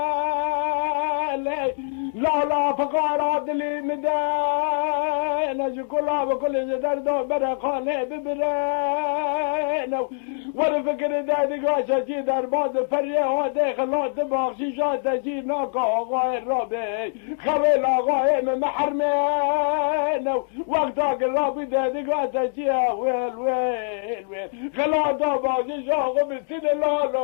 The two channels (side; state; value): right; silent; digital silence